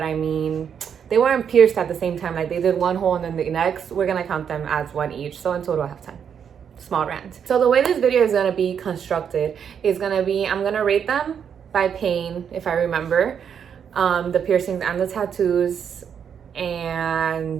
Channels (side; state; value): left; quieter; 7.8 dB